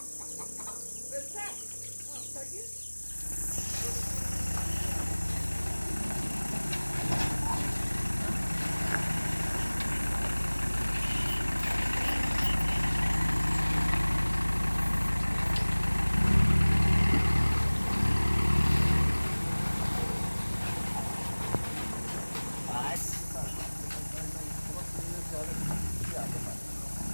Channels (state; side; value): inverted; both; correlation -1.00